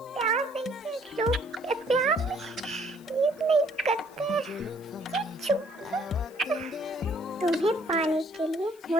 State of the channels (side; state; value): left; noise; hiss, 26 dB below the sound